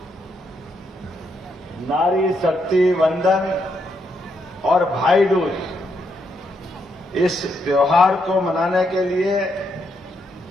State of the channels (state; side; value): normal; both; correlation 0.78